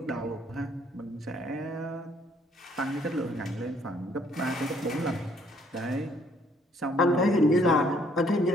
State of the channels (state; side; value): normal; both; correlation 0.65